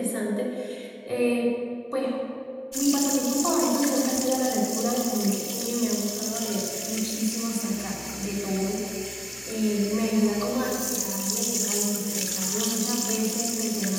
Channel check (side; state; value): both; identical; correlation 1.00